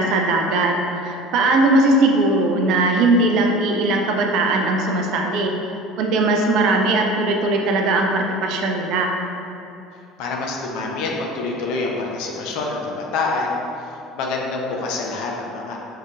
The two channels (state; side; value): normal; both; correlation 0.39